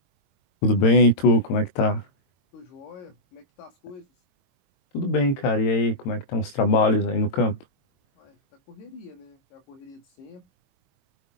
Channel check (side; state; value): right; late; 22 ms